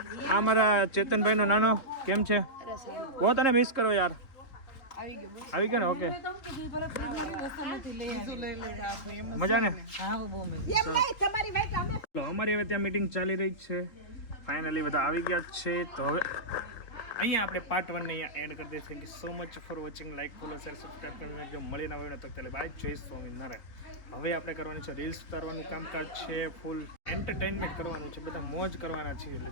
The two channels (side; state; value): right; late; 3.8 ms